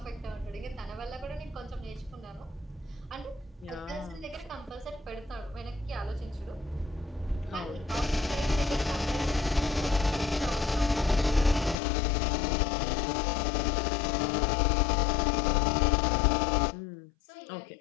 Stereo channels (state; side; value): drops out; right; at 11.8 s